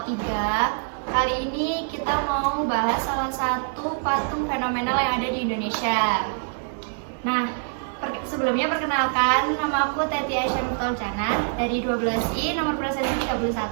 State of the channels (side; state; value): left; silent; digital silence